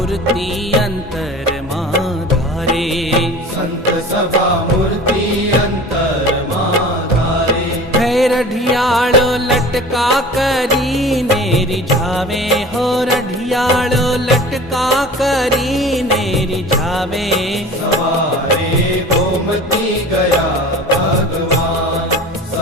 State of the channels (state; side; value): normal; both; correlation 0.40